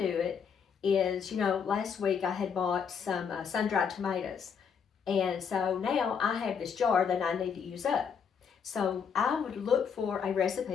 it is, last week I had bought some sun-dried tomatoes. And so now I have this jar that I need to use up. So I would look for a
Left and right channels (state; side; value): quieter; right; 6.7 dB